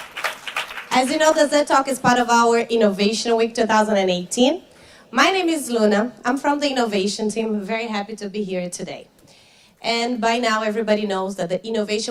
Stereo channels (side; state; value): both; identical; correlation 1.00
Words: As you know, the ZEDtalk is part of our Innovation Week 2018. My name is Luna. I'm from the innovation team. I'm very happy to be here today. And by now, everybody knows that the